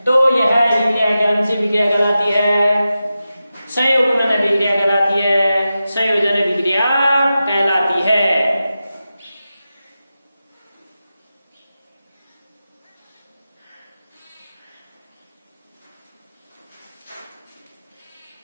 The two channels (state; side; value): inverted; both; correlation -0.92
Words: तो यह विक्रिया कौन सी विक्रिया कहलाती है? संयुग्मन अभिक्रिया कहलाती है, संयोजन अभिक्रिया कहलाती है।